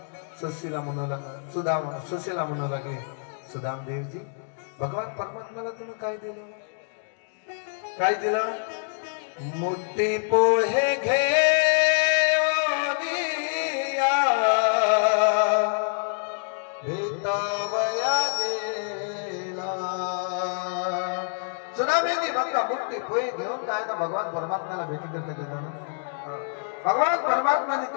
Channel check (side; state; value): right; silent; digital silence